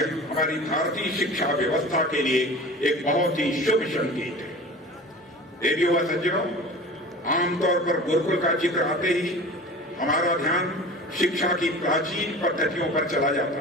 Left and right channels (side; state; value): both; normal; correlation 0.37